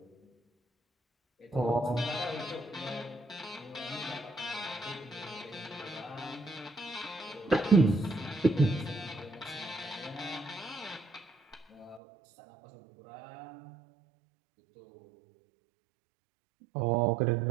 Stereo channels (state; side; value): drops out; left; at 12.0 s